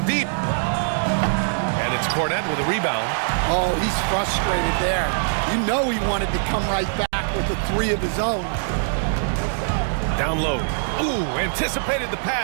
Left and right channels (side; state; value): left; silent; digital silence